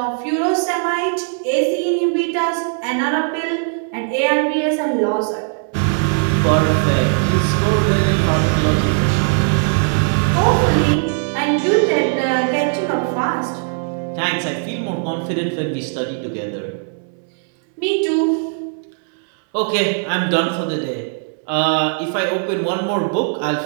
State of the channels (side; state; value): left; silent; 63 dB below the other